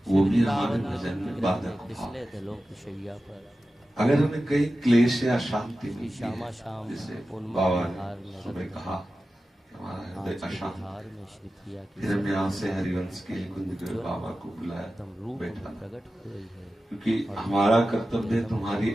वो भी हमारे भजन में बाधक भाव। दलों की शैया पर अगर हमें कई क्लेश या शांति मिलती श्यामा है, श्याम जैसे बाबा ने सुबह कहा हमारा हृदय अशांत, फिर हम यहाँ से हरिवंश के कुंज के बाबा को बुलाया, बैठा, क्योंकि हमारा कर्तव्य है तुम्हारी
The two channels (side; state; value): both; normal; correlation 0.94